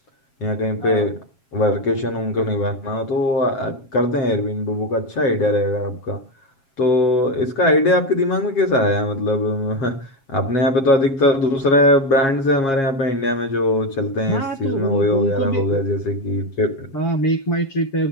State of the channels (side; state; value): right; late; 7.4 ms